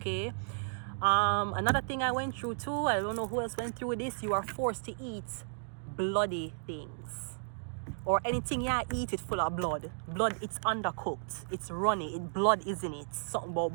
Another thing I went through too, I don't know who else went through this, you are forced to eat bloody things. or anything you eat it full of blood. Blood, it's undercooked, it's runny, it blood is in it. Something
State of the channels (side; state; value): left; silent; digital silence